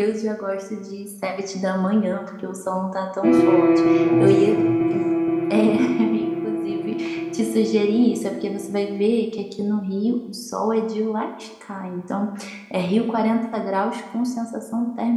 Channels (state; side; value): identical; both; correlation 1.00